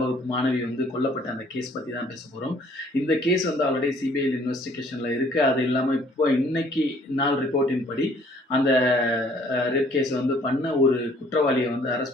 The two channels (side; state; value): both; normal; correlation 0.59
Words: வகுப்பு மாணவி வந்து கொல்லப்பட்ட அந்த கேஸ் பத்தி தான் பேச போறோம். இந்த கேஸ் வந்து ஆல்ரெடி சிபிஐ இன்வெஸ்டிகேஷன்ல இருக்கு. அது இல்லாம இப்போ இன்னைக்கு நாள் ரிப்போர்ட்டின் படி அந்த ரேப் கேஸ் வந்து பண்ண ஒரு குற்றவாளிய வந்து